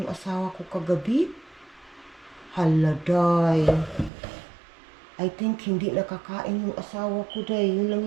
asawa ko kagabi? Hala, day. I think hindi nakakain yung asawa ko, day. Yun lang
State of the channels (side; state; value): left; drops out; at 4.1 s